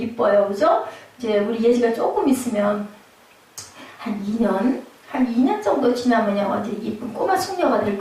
그죠? 이제 우리 예지가 조금 있으면 한 2년 정도 지나면요 완전 이쁜 꼬마 숙녀가 될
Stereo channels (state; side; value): identical; both; correlation 1.00